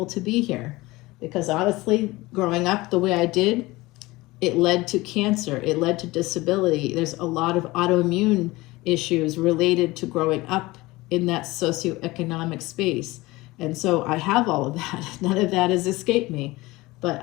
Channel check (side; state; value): right; quieter; 20.6 dB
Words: to be here because honestly, growing up the way I did, it led to cancer. It led to disability. There's a lot of autoimmune issues related to growing up in that socioeconomic space. And so I have all of that. None of that has escaped me. But